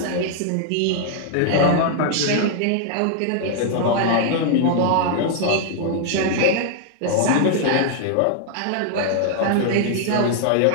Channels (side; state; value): both; different; correlation 0.00